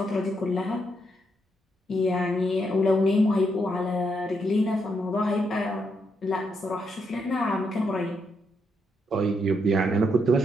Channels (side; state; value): both; normal; correlation 0.79